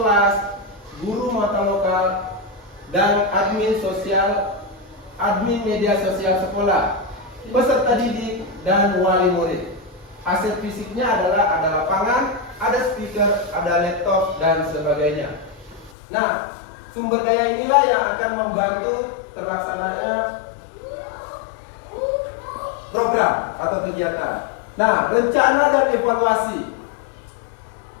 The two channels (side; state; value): right; drops out; at 15.9 s